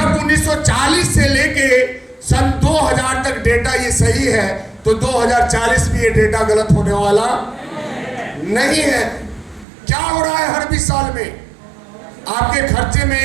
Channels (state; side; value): drops out; left; at 9.7 s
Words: 1940 से लेके सन 2000 तक डेटा ये सही है, तो 2040 में ये डेटा गलत होने वाला नहीं है। क्या हो रहा है? हर 20 साल में आपके खर्चे में